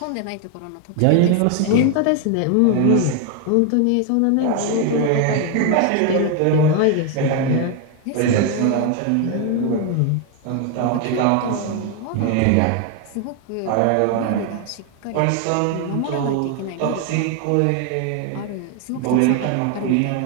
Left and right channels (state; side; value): different; both; correlation 0.01